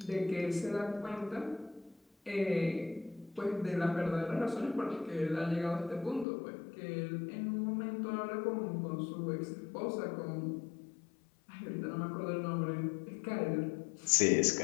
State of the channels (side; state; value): right; drops out; at 6.2 s